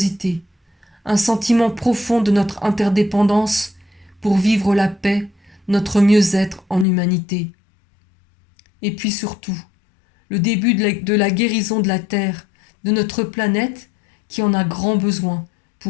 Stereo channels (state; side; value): drops out; right; at 6.9 s